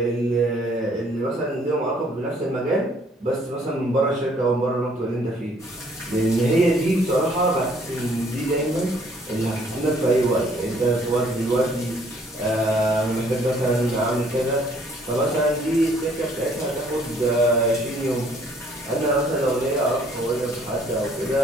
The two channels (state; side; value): normal; both; correlation 0.62